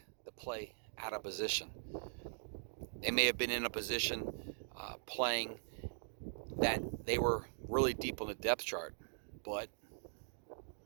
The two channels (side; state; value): left; silent; digital silence